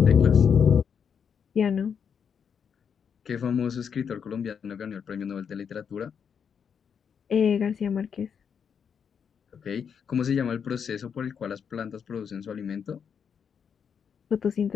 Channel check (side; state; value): right; quieter; 7.1 dB